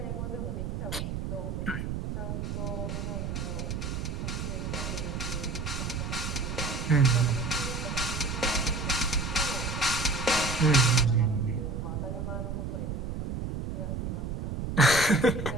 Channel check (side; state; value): right; noise; rumble, 3 dB below the sound